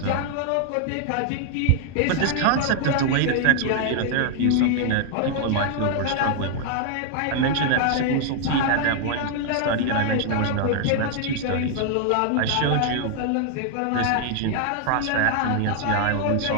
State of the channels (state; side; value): different; both; correlation 0.00